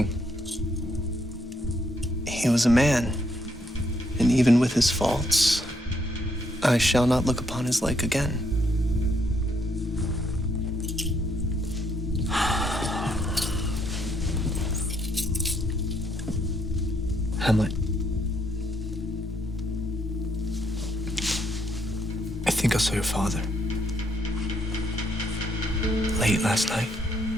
He was a man, and even with his faults, I shall not look upon his like again. Hamlet. I think I saw your father. Late last night.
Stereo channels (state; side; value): normal; both; correlation 0.73